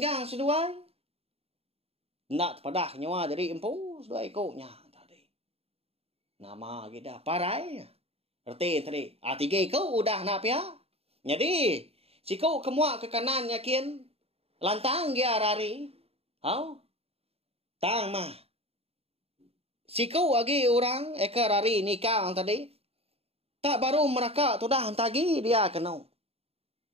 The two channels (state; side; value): late; left; 0.29 ms